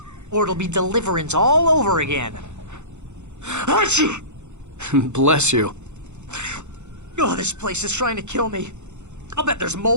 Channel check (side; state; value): left; late; 0.83 ms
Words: or it'll be Deliverance all over again. Bless you. Oh, this place is trying to kill me. I'll bet there's